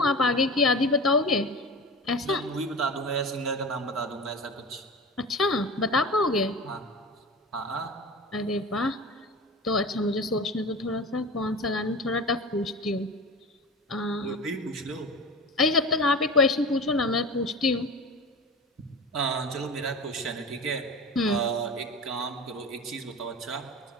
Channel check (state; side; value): normal; both; correlation 0.31